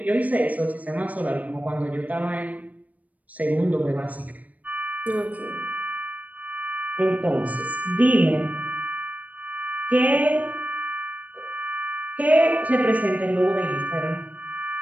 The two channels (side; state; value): left; late; 0.073 ms